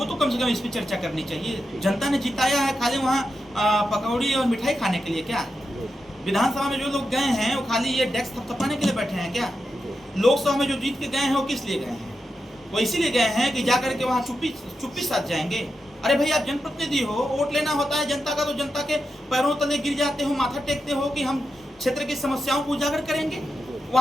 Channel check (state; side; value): normal; both; correlation 0.88